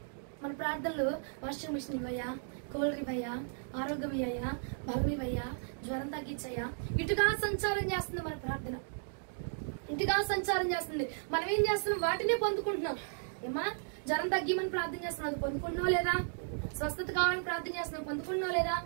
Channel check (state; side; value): silent; left; digital silence